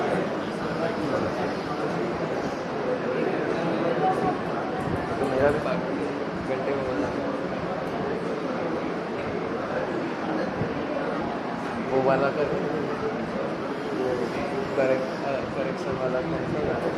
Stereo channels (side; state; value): both; identical; correlation 1.00